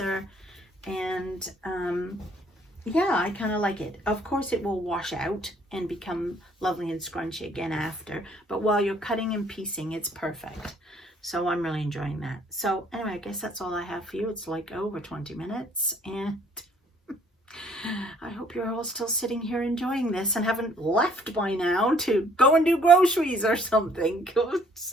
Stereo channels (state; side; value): normal; both; correlation 0.61